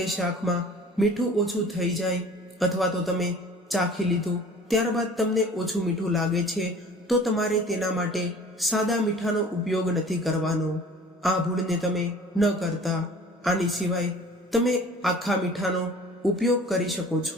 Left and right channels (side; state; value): both; normal; correlation 0.46